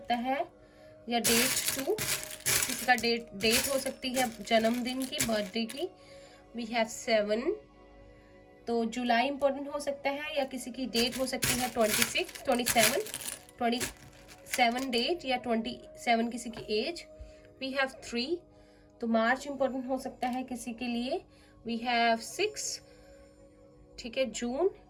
है, या डेट 2 किसी का डेट हो सकती है जन्मदिन की, बर्थडे की। वी हैव 7, तो जुलाई इम्पोर्टेंट हो सकता है, या किसी की डेट हो सकती है 27 डेट, या 27 किसी की एज। वी हैव 3, तो मार्च इम्पोर्टेंट हो सकता है किसी के लिए। वी हैव 6, ठीक है, जून,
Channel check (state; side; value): identical; both; correlation 1.00